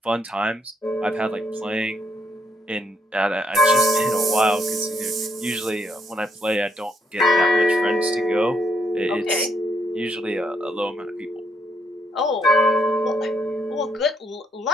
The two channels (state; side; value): normal; both; correlation 0.75